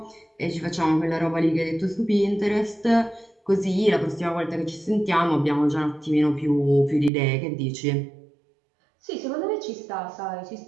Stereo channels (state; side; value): drops out; left; at 7.1 s